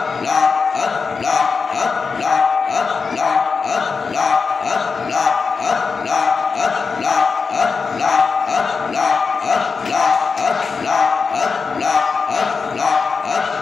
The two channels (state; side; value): quieter; right; 5.0 dB